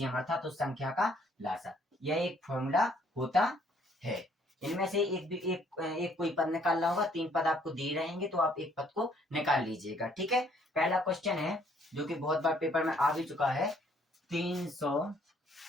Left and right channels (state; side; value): normal; both; correlation 0.64